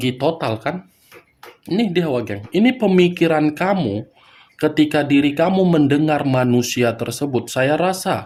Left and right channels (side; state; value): both; identical; correlation 1.00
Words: total kan? Ini dia, Wak Geng. Ini pemikiran kamu ketika diri kamu mendengar manusia tersebut. Saya